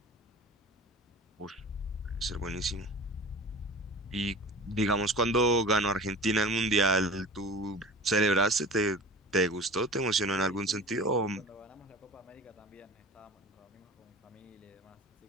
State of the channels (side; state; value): both; normal; correlation 0.38